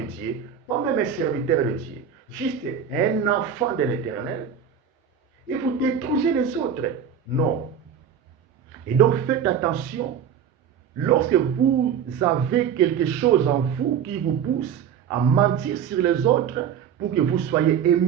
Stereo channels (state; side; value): quieter; left; 8.0 dB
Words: Dieu, pas même un serviteur de Dieu, juste un enfant de l'Éternel, et vous détruisez les autres. Non. Et donc faites attention, lorsque vous avez quelque chose en vous qui vous pousse à mentir sur les autres pour que vous soyez